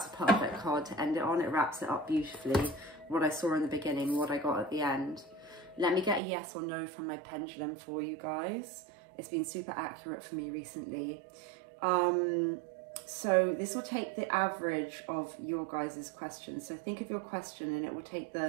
a perfect card to end it on. It wraps it up beautifully. What I saw in the beginning, what I got at the end. Let me get a yes or no from my pendulum for you guys. It's been super accurate for me recently. So this will take the average of your guys' questions. So think of your question and it will take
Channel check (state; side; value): drops out; left; at 6.2 s